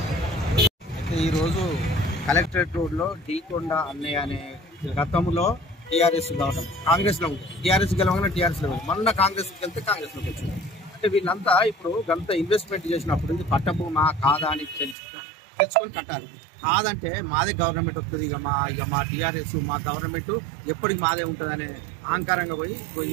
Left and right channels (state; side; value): drops out; left; at 15.0 s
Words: ఈరోజు collectorate రోడ్లో డీకొండ అన్నయ్య అనే గతంలో టీఆర్ఎస్ గెలవడం కాంగ్రెస్లో ఉంది. టీఆర్ఎస్ గెలవగానే టీఆర్ఎస్లో ఉంది. మొన్న కాంగ్రెస్కి వెళ్తే కాంగ్రెస్లోకి వచ్చింది. అంటే వీళ్ళంతా ఇప్పుడు గంత ఇన్వెస్ట్మెంట్ చేసినప్పుడు ఇది పట్టభూమా కాదా అని తెలుసుకొని కట్టాలి. కాదంటే మాదే గవర్నమెంట్ వస్తుంది, ఇక మా టీఆర్ఎస్ మా గవర్నమెంట్ ఎప్పటికి మాదే ఉంటుందనే అహంకారంగా పోయి